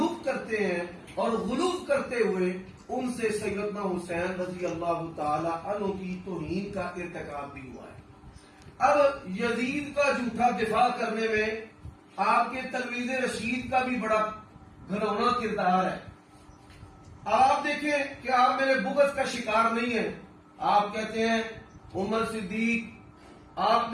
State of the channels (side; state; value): both; identical; correlation 1.00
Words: کرتے ہیں، اور غلوف کرتے ہوئے ان سے سیدنا حسین رضی اللہ تعالی عنہ کی توہین کا ارتکاب بھی ہوا ہے. اب یزید کا جھوٹا دفاع کرنے میں آپ کے تلمیذ رشید کا بھی بڑا گھنونا کردار ہے. آپ دیکھیں کہ آپ میرے بغض کا شکار نہیں ہیں. آپ کہتے ہیں عمر صدیق آپ